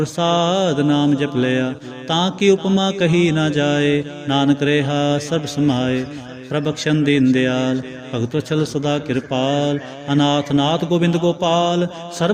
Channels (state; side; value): identical; both; correlation 1.00